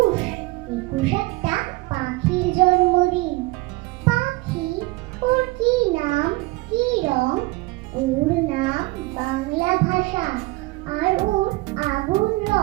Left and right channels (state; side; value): quieter; left; 22.0 dB